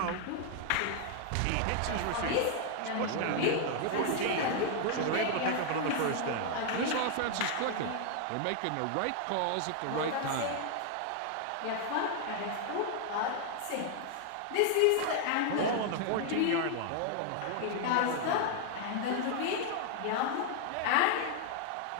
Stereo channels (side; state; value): both; different; correlation 0.00